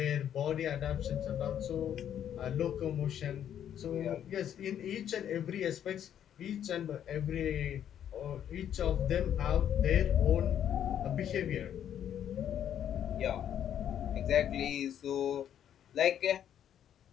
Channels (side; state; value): right; quieter; 9.8 dB